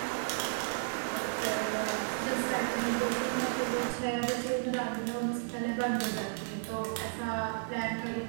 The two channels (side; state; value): left; silent; digital silence